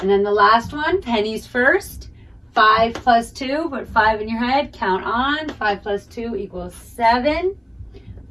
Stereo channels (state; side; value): identical; both; correlation 1.00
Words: then the last one, pennies first. 5 plus 2, put 5 in your head. Count on. 5 plus 2 equals 7.